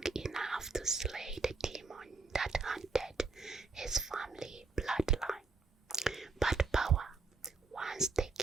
enough to slay the demon that haunted his family bloodline. But power, once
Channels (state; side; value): quieter; left; 4.0 dB